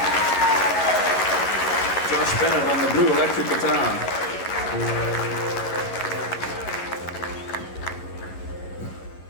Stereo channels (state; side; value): late; right; 11 ms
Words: Josh Bennett on the blue electric guitar.